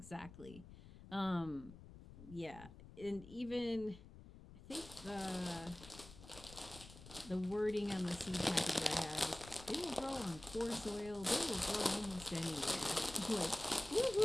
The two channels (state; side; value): noise; left; rumble, 17 dB below the sound